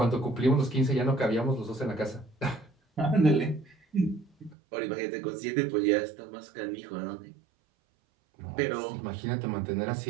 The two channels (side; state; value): left; drops out; at 4.5 s